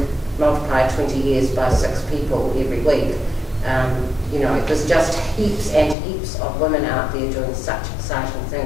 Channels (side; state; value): right; drops out; at 6.0 s